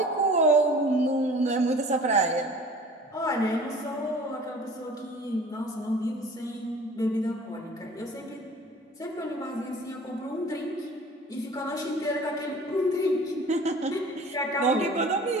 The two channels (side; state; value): both; normal; correlation 0.45